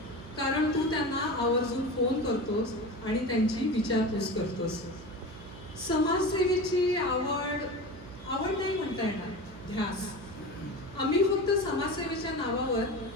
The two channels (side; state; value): right; noise; hum, 17 dB below the sound